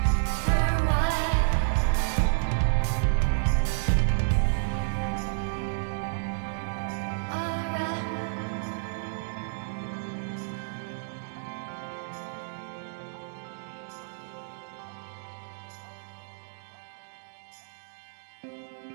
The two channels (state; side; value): silent; left; digital silence